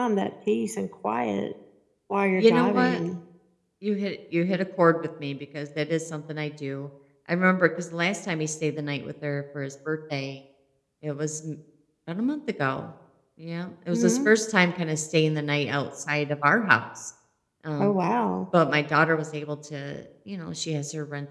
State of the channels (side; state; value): both; identical; correlation 1.00